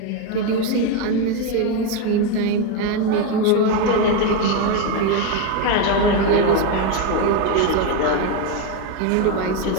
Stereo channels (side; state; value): both; different; correlation 0.03